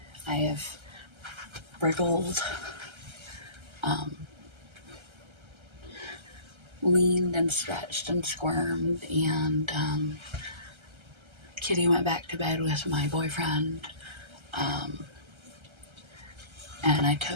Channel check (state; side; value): late; left; 1.3 ms